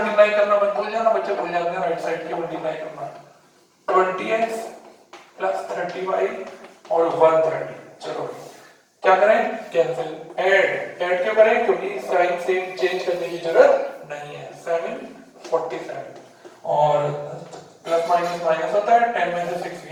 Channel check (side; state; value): both; identical; correlation 1.00